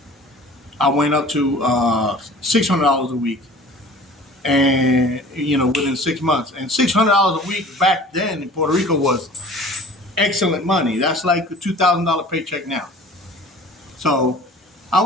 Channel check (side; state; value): both; normal; correlation 0.45